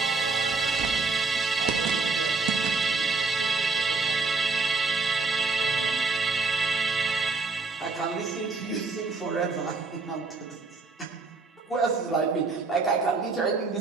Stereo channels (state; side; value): quieter; left; 4.1 dB